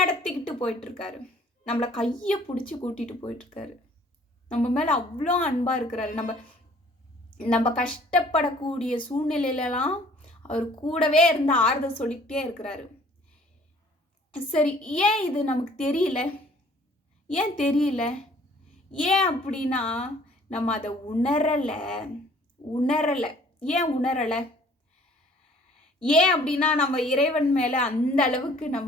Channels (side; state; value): both; normal; correlation 0.56